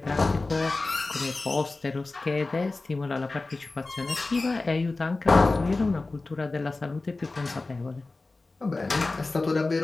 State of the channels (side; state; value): right; quieter; 3.4 dB